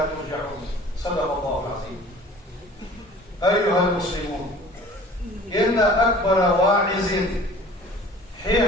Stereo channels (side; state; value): both; normal; correlation 0.46